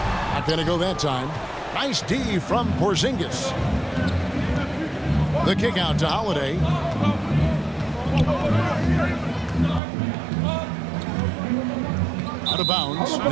Not going to go that time. Nice D from Porzingis. The kick out to Holiday. Out of bounds.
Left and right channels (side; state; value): left; drops out; at 9.8 s